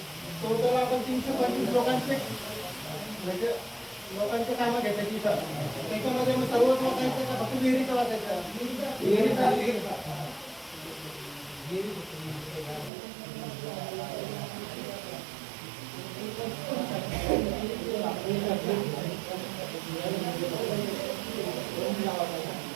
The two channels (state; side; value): drops out; left; at 12.9 s